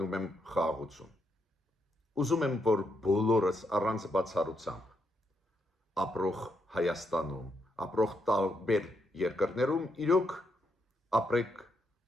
եմ խաղաղություն։ Ուզում եմ, որ բոլորս առանց բացառությամբ ապրող Հայաստանում, ապրող տարբեր երկրներում իրոք ապրեք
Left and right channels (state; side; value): normal; both; correlation 0.79